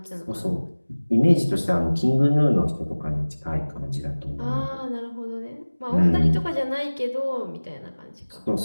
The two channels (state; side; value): inverted; both; correlation -1.00